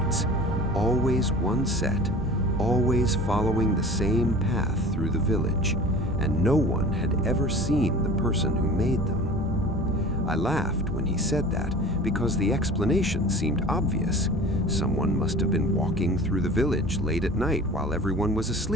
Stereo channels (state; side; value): normal; both; correlation 0.40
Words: always one set, always following the same path through the village, and no one had ever seen the person who made them. I laughed when he said that because the explanation seemed obvious. Someone must have been walking through the village late at night while everyone was